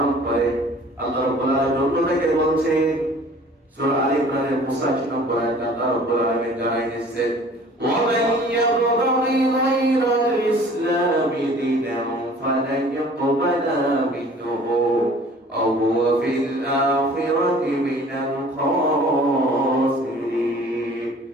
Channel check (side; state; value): both; normal; correlation 0.49